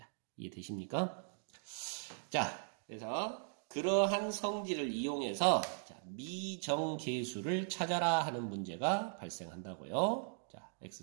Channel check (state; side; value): silent; left; digital silence